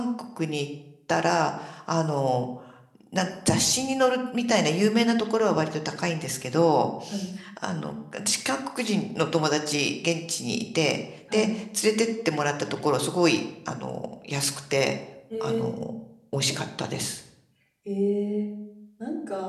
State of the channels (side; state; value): both; identical; correlation 1.00